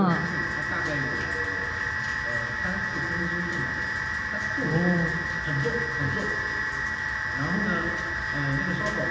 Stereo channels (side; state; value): both; identical; correlation 1.00